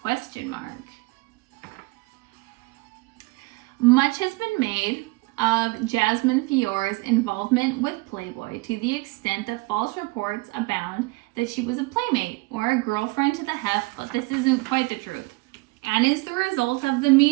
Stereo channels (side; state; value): left; quieter; 24.5 dB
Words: ? Much has been made of Jasmine Fiore's involvement with Playboy to the extent that false reports abound that she was a playmate or a girlfriend to the heft, but this isn't quite the truth, and is the result of the